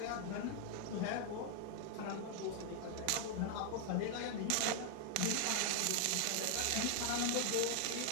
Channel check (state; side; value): different; both; correlation 0.00